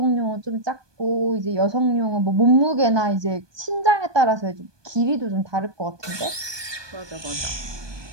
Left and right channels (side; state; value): left; late; 1.2 ms